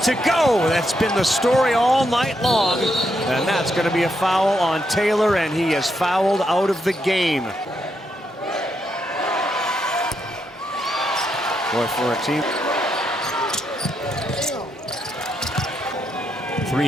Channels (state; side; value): normal; both; correlation 0.80